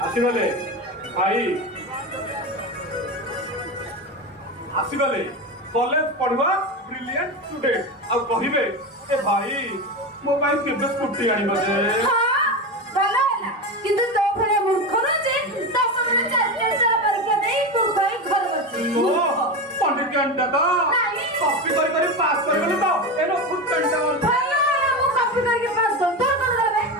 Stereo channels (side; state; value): both; normal; correlation 0.19